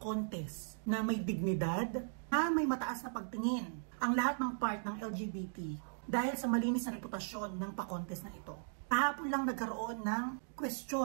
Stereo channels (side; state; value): left; silent; digital silence